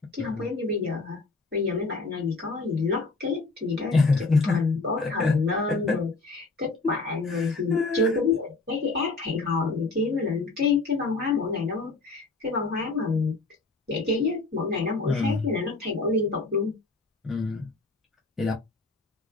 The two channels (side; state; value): right; quieter; 3.6 dB